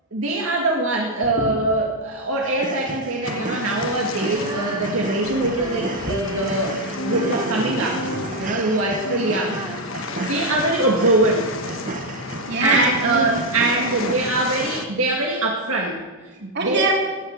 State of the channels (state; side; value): normal; both; correlation 0.03